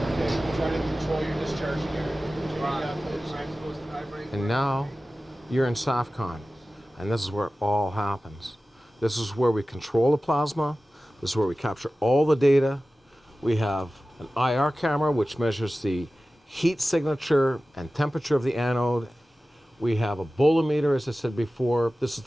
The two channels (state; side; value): normal; both; correlation 0.96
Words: okay. Try to control your discharge here. And now you're in SAFCON, and this is where it all happens. This is where we control the plasma. This is where we capture all the data. We have an IR camera, which measures the heat signature and temperature of the anode. We have a bolometer, as I said before. This is